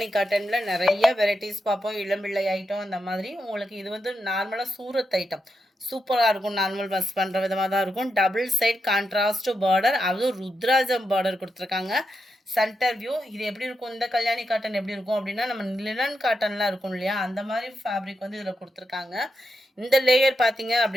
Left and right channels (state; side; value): normal; both; correlation 0.86